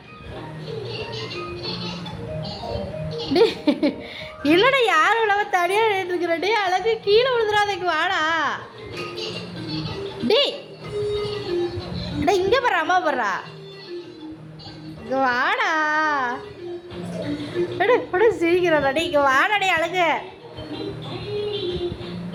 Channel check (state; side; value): identical; both; correlation 1.00